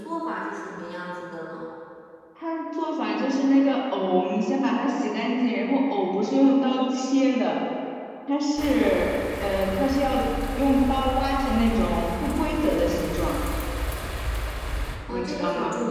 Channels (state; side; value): identical; both; correlation 1.00